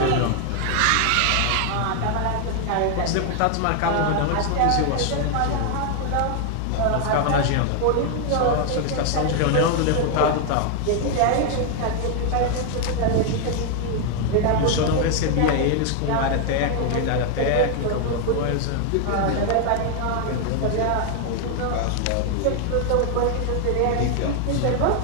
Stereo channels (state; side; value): different; both; correlation 0.00